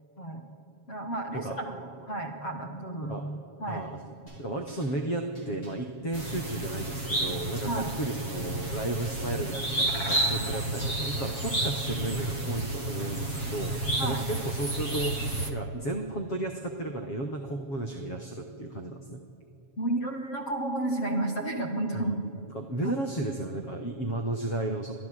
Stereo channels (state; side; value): late; right; 7.3 ms